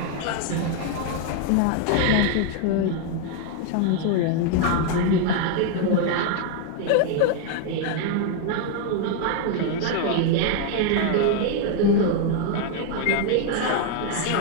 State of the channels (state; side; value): different; both; correlation 0.00